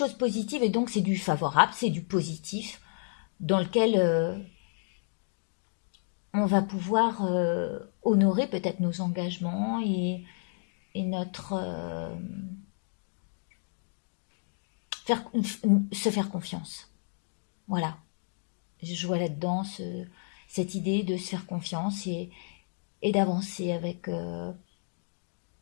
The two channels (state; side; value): silent; right; digital silence